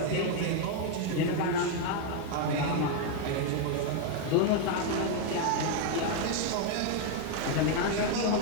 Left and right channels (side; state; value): both; different; correlation 0.00